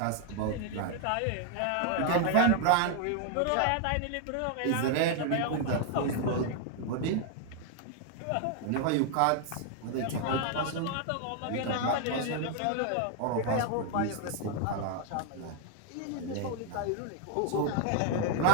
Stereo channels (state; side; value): different; both; correlation 0.00